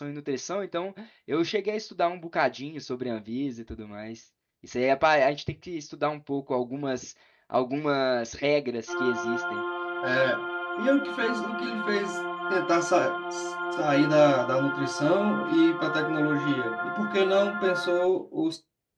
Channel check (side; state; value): both; identical; correlation 1.00